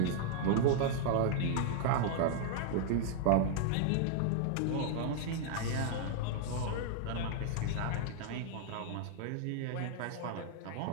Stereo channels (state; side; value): different; both; correlation 0.00